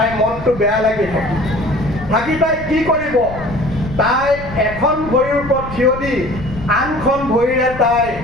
মনটো বেয়া লাগি থাকি তাই কি কৰিব, তাই এখন ভৰিৰ ওপৰত থিয় দি আনখন ভৰিৰে তাই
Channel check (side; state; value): left; noise; rumble, 13 dB below the sound